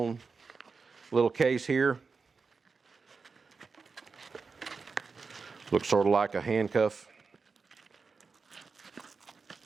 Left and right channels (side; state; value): left; quieter; 4.8 dB